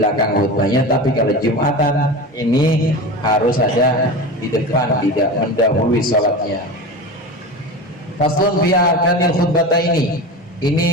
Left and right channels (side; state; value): both; normal; correlation 0.28